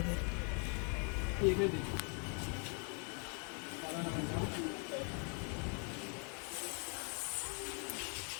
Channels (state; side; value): quieter; right; 38.8 dB